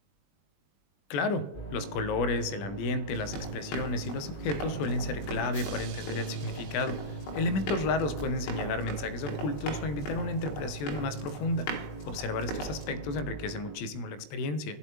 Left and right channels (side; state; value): right; late; 20 ms